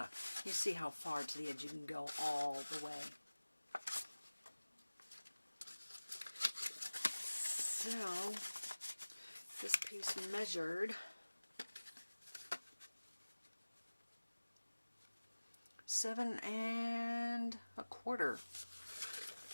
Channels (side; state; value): both; inverted; correlation -1.00